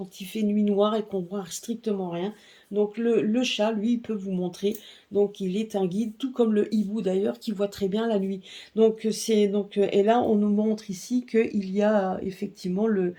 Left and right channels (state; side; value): identical; both; correlation 1.00